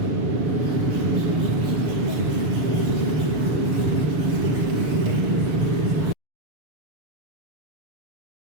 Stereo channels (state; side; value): late; left; 7.0 ms